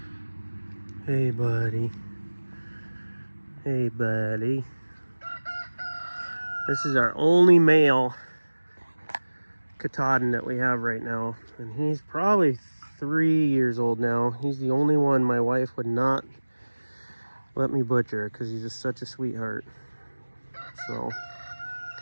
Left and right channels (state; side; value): inverted; both; correlation -1.00